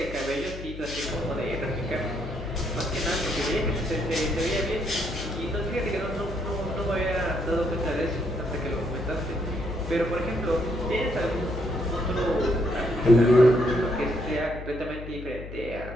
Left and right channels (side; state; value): left; noise; hum, 11 dB below the sound